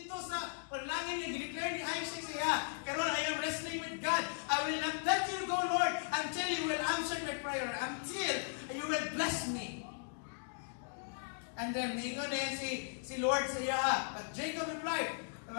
sa panalangin niya. Dineclare ni Isaac siya, karon I am wrestling with God. I will not let you go, Lord, until you will answer my prayer, until you will bless me. And then, mingon na si Lord sa iya. But Jacob replied,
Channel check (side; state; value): right; silent; digital silence